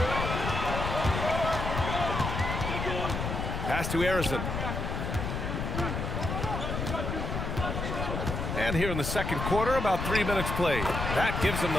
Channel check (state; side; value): noise; left; rumble, 3 dB below the sound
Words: Pass to Harrison. And here in the second quarter, about 3 minutes played. That gives them